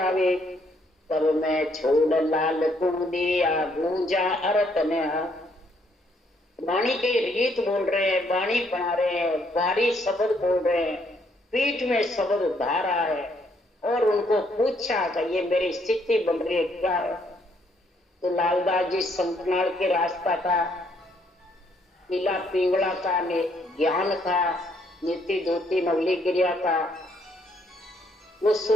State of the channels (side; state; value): both; normal; correlation 0.70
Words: तब मैं छोड़ लाल तू दिया गूंजा अरत ने। वाणी के रीत बोल रहे हैं, वाणी बना रहे हैं, भारी शब्द बोल रहे हैं, पीठ में शब्द धारा है, और उनको पूछा कि ये मेरी स्थिति बन रही है क्या है। तो लालदास जी संकनाल के रास्ता था, पीला पिंगला का ज्ञान था, नीति धोती नवली गिरिया था, वो